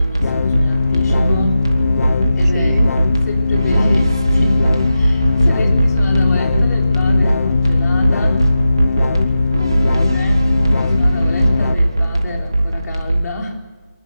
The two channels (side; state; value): both; inverted; correlation -0.90